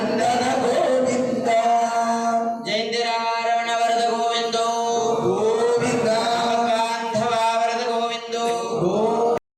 गोविंद जयंतिरारवण वरद गोविंदो गोविंद बांधवा वरद गोविंदो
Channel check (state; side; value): identical; both; correlation 1.00